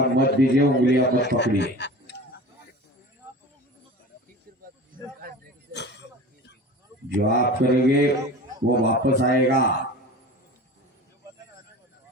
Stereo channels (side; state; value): both; normal; correlation 0.36